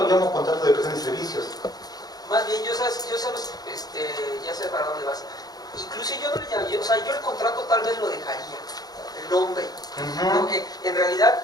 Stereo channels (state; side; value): late; right; 0.19 ms